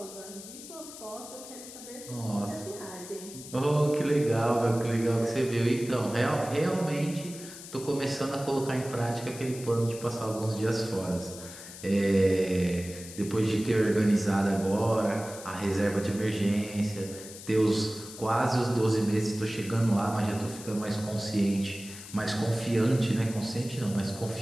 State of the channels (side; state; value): left; noise; hiss, 14 dB below the sound